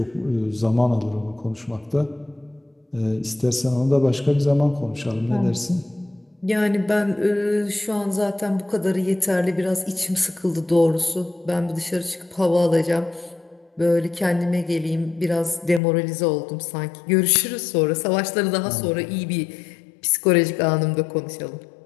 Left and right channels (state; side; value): drops out; right; at 15.8 s